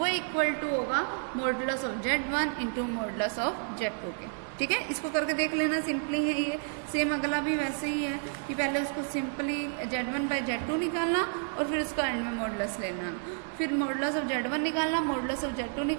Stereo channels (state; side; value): silent; left; 58 dB below the other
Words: इक्वल टू होगा modulus of z1 into modulus of z2 के। ठीक है, इसको करके देख लेना, सिंपली है ये। सेम अगला भी वैसे ही है कि पहले उसको सिंपली z1 बाई z2 निकालना और फिर उसका एंड में मॉडुलस लेना, फिर मॉडुलस ऑफ z1 निकालना, मॉडुलस ऑफ z2